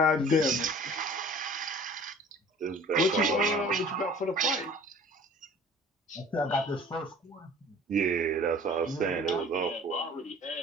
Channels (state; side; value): normal; both; correlation 0.47